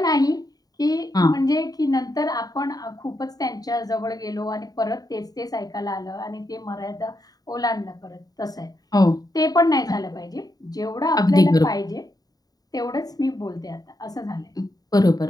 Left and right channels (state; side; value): late; right; 0.18 ms